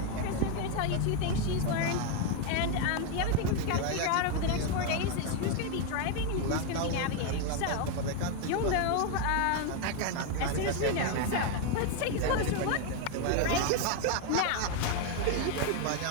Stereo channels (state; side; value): different; both; correlation 0.01